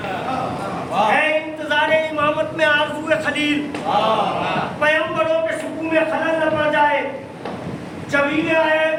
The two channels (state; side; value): identical; both; correlation 1.00